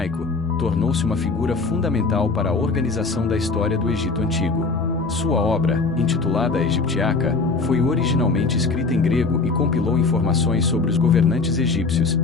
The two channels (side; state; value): right; quieter; 4.1 dB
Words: tornou-se uma figura fundamental para a organização da história do Egito Antigo. Sua obra, intitulada a Egiptiaca, foi originalmente escrita em grego e compilou informações sobre os governantes egípcios,